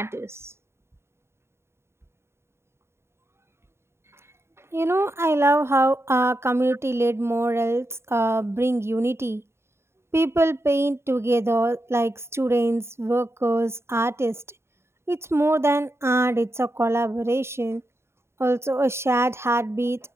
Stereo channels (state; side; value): late; left; 0.12 ms